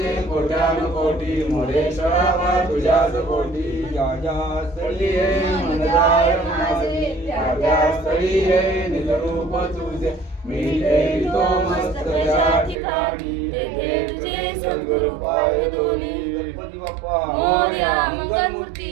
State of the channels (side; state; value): left; drops out; at 12.8 s